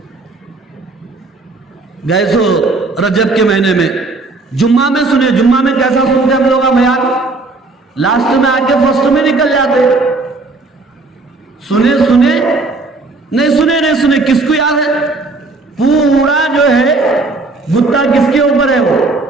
گئے سو رجب کے مہینے میں، جمعہ میں سنے، جمعہ میں کیسا سنتے ہم لوگ بیان؟ لاسٹ میں آ کے فرسٹ میں نکل جاتے۔ سنے نہیں سنے، کس کو یاد ہے؟ پورا جو ہے گتا کس کے اوپر ہے؟ وہ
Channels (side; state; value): left; quieter; 3.5 dB